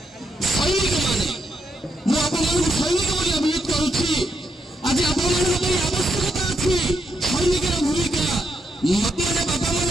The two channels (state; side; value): normal; both; correlation 0.80